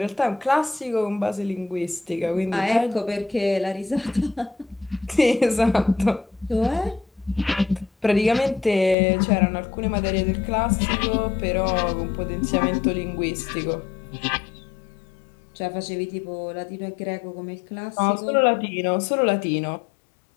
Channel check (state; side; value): drops out; right; at 9.0 s